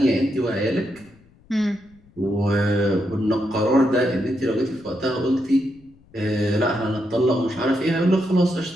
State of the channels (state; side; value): noise; left; rumble, 29 dB below the sound